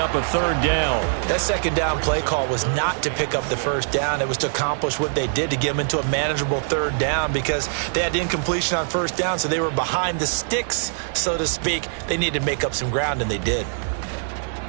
a third down. That second down play call was not to pick up the first down. It was to accomplish what they did to get them into a manageable third down because they had incompletion on first down, so they were behind the sticks, so to speak. They needed to make up some ground, and they did.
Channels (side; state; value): left; silent; digital silence